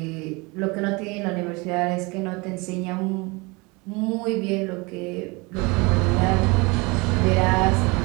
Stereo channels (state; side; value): quieter; left; 26.5 dB